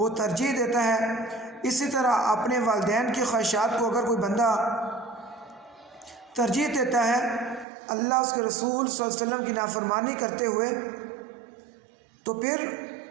ترجیح دیتا ہے۔ اسی طرح اپنے والدین کی خواہشات کو اگر کوئی بندہ ترجیح دیتا ہے اللہ اس کے رسول صلی اللہ علیہ وسلم کی نافرمانی کرتے ہوئے، تو پھر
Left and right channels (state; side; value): drops out; left; at 7.7 s